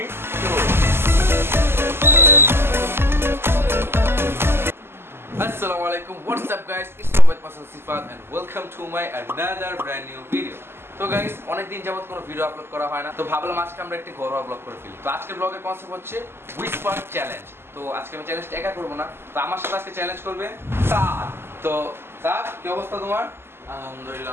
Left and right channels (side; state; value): left; late; 0.12 ms